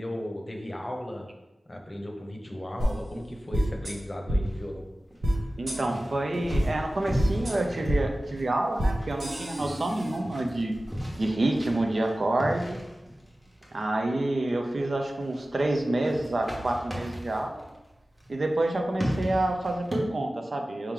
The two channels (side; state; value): both; normal; correlation 0.96